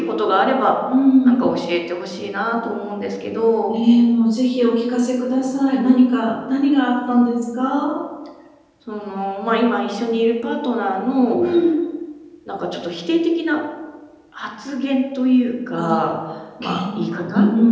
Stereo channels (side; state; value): both; identical; correlation 1.00